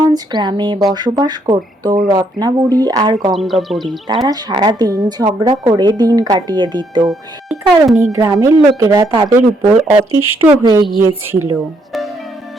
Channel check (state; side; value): normal; both; correlation 0.72